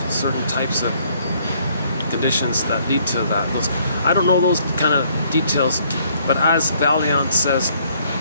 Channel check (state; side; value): inverted; both; correlation -0.65